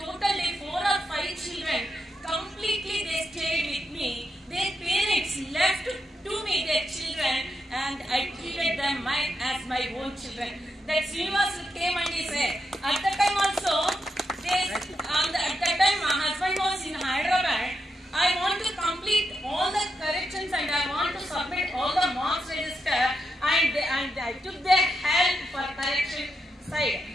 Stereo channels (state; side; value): normal; both; correlation 0.85